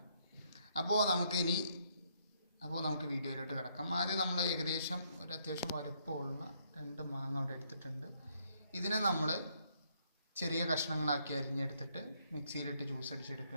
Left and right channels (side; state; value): both; inverted; correlation -0.71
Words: അപ്പോൾ നമുക്ക് വീഡിയോയിലോട്ട് കിടക്കാം. ആദ്യം നമ്മൾ ഏകദേശം ഒരു അത്യാവശ്യം വലുപ്പമുള്ള 2 മാങ്ങ അവിടെ എടുത്തിട്ടുണ്ട്. ഇതിനെ നമ്മൾ ചെറിയ കഷ്ണങ്ങളാക്കി അരിഞ്ഞെടുത്തിട്ട് മിക്സിയിലിട്ട് ജ്യൂസ്